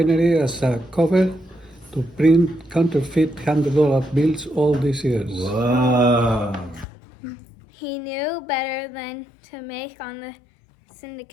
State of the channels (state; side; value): drops out; right; at 6.9 s